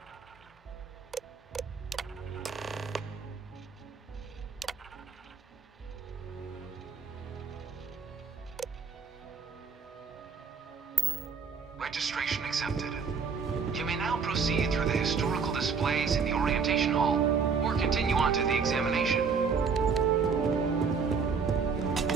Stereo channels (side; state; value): left; quieter; 5.6 dB